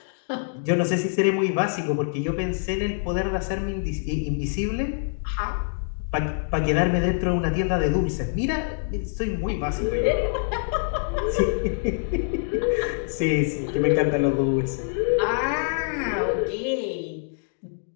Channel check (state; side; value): silent; right; digital silence